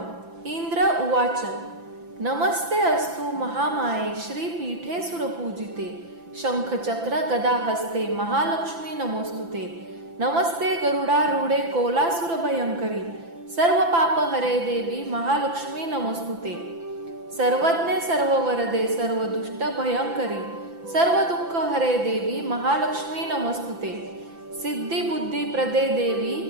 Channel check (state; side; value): late; left; 5.9 ms